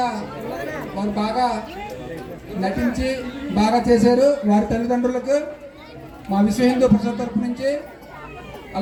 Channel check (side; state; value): both; identical; correlation 1.00